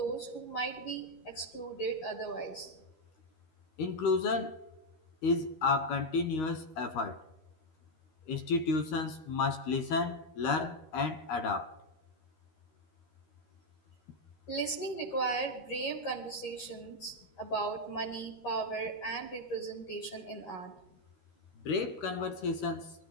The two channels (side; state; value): right; late; 13 ms